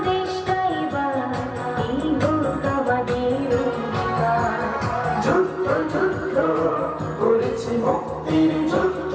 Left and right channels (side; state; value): both; identical; correlation 1.00